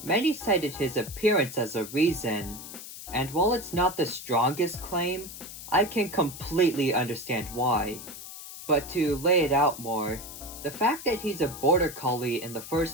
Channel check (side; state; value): left; noise; hiss, 12 dB below the sound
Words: many cited his appearance as a reason. And while it's not the strongest claim, I can completely understand why. But to lay it out more, the fact that he's a border collie in the